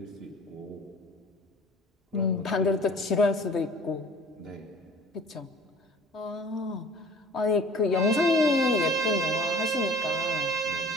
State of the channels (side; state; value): both; normal; correlation 0.47